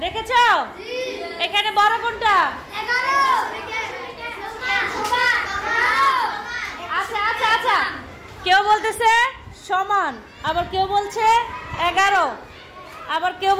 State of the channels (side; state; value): both; identical; correlation 1.00